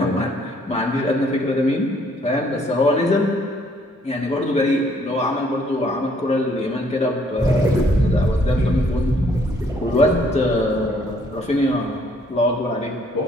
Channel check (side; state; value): both; normal; correlation 0.65